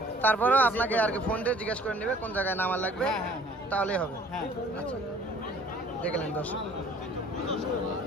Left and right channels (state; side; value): normal; both; correlation 0.54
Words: তারপরেও আপনাকে আর কি ফোন দিয়ে জিজ্ঞেস করে নেবে কোন জায়গায় নামার লাগবে, হ্যাঁ, হ্যাঁ, হ্যাঁ। তাহলেই হবে। হ্যাঁ। আচ্ছা, দেখলেন দর্শক।